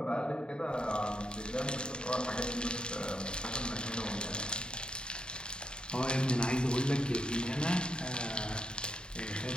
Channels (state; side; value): late; right; 0.049 ms